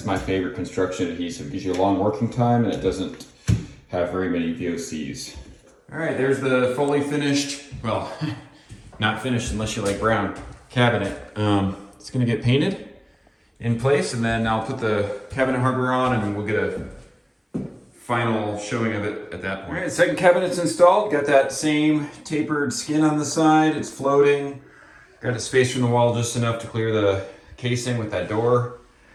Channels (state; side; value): identical; both; correlation 1.00